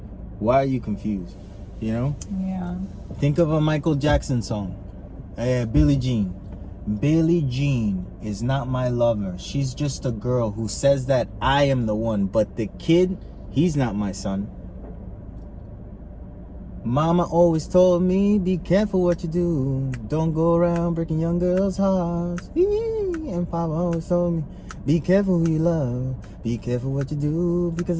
Why are you confused? You know? Yeah. Think of a Michael Jackson song. Billie Jean. Billie Jean is not my lover. She's just a girl who says that I am the one. But the kid, he's not my son. Mama always told me, be careful what you do. Don't go around breaking young girls' hearts. And Papa always told me, be careful who you love. Be careful what you do, because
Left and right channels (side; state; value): both; identical; correlation 1.00